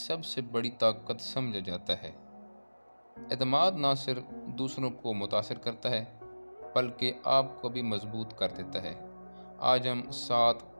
बड़ी ताकत समझा जाता है। एतमाद ना सिर्फ दूसरों को मुतासिर करता है, बल्कि आपको भी मजबूत कर देता है। आज हम 7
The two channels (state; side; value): inverted; both; correlation -1.00